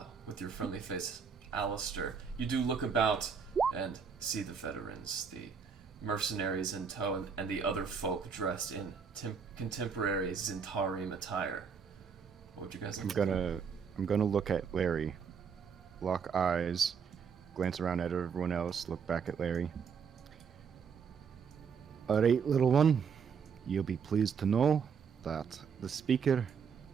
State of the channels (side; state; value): left; quieter; 6.3 dB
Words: with your friendly face, Alistair, you do look about and see the veterans, the mercenaries in tow, and the other folk dressed in contemporary Zentarim attire. What would you guys like? I'm gonna look at Larry, lock eyes, glance around at everyone else, look back at Larry. Alright, little one, you'll be pleased to know that the speaker